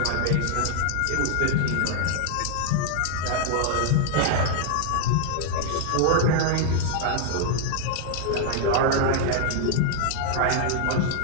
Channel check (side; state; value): both; different; correlation 0.00